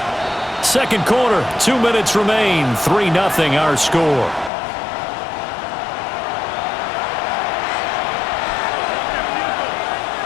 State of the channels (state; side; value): drops out; right; at 4.5 s